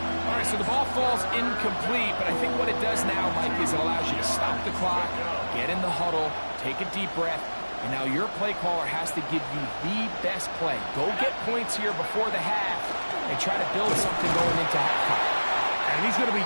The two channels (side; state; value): both; inverted; correlation -1.00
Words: All right, so the ball falls incomplete, but I think what it does now, Mike, is it allows you to stop the clock, get in the huddle, take a deep breath, and now your play caller has to give you the best play. Go get points here before the half and try to build something going into halftime. And he's going to be